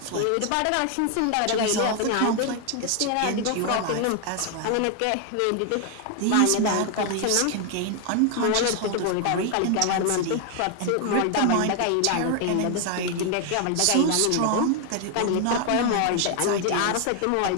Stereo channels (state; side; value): different; both; correlation 0.00